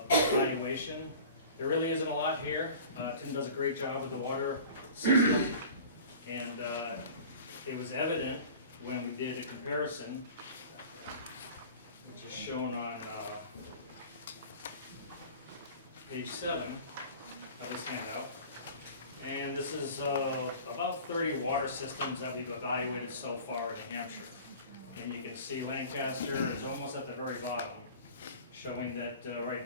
There really isn't a lot here. Tim does a great job with the water system, and it was evident when we did a comparison, which is shown on page 7 of this handout. And this is about 30 water systems that we've evaluated so far in New Hampshire. And you can see Lancaster is almost at the very bottom, showing that right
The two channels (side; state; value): both; inverted; correlation -0.41